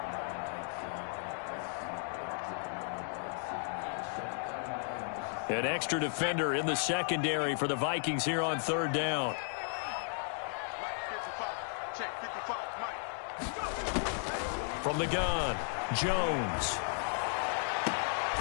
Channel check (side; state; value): right; silent; 55 dB below the other